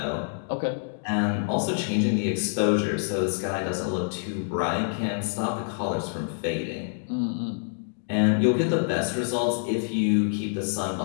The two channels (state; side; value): silent; right; digital silence